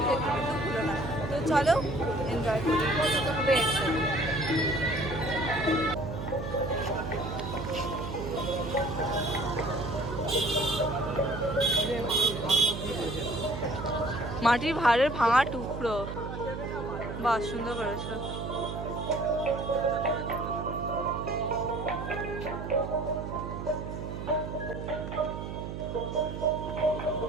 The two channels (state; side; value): noise; right; hum, 7 dB below the sound